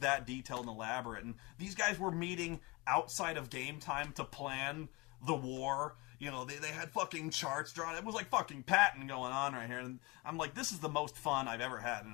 that detailed and elaborate. And these guys were meeting outside of game time to plan the war. They had fucking charts drawn. It was like fucking Patton going on right here. And I'm like, this is the most fun I've ever had in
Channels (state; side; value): quieter; right; 24.7 dB